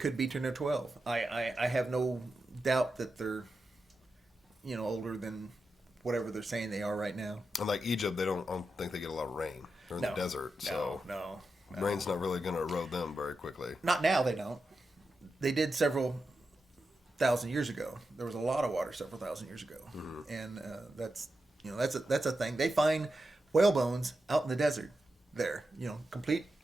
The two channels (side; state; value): both; normal; correlation 0.89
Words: be 10 or 12. I have no doubt that they're, older than whatever they're saying they are right now. And like Egypt, I don't think they get a lot of rain. They're in the desert, so no. Rain's not really going to erode them very quickly. Not now, they don't. They did several thousand years ago. There was a lot of water several thousand years ago, and that's a thing. They find whale bones out in the desert there. Complete